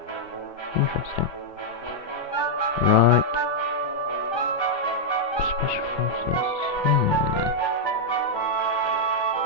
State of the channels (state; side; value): late; right; 1.3 ms